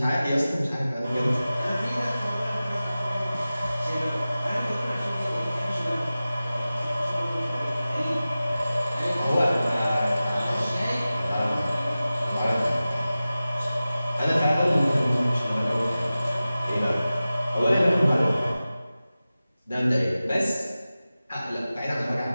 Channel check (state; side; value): inverted; both; correlation -0.96